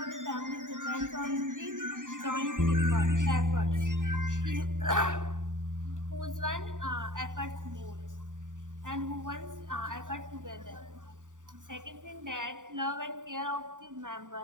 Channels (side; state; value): left; late; 0.87 ms